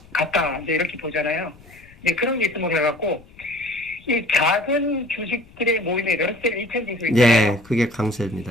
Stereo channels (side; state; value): left; noise; rumble, 25 dB below the sound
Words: 같다, 이제 이렇게 보잖아요. 이제 그런 게 있음으로 해갖고 이 작은 주식들의 모임이 러셀 2000 지수 있잖아요. 예, 그게